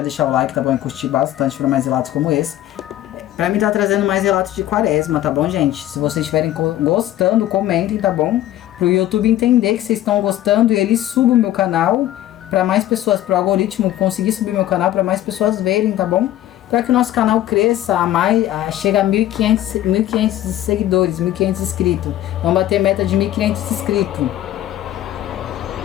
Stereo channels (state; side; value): quieter; right; 13.1 dB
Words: deixar o like, tá bom? E curtir bastante para mais relatos como esse. Pra mim tá trazendo mais relatos de quaresma, tá bom, gente? Se vocês estiverem gostando, comentem, tá bom? Pro YouTube entender que vocês estão gostando e ele suba o meu canal pra mais pessoas, pro algoritmo conseguir subir meu canal pra mais pessoas verem, tá bom? Pra que o nosso canal cresça chegue a 1.500 seguidores, 1.500 inscritos. Vamos bater meta de 1.500 inscritos.